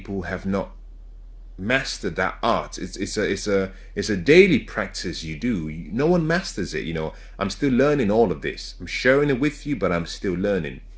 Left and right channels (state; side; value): identical; both; correlation 1.00